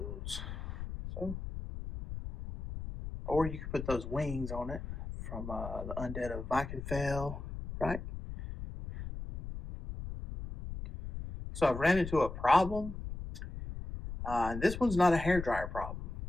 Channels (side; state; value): left; noise; rumble, 8 dB below the sound